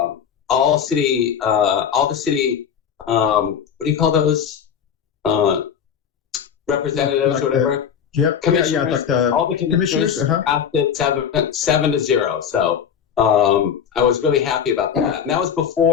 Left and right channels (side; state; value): right; quieter; 8.0 dB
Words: the city, what do you call those? Representatives or whatever. Yep. Commissioners, like the all the commissioners passed it 7-0. So I was really happy about that. And that was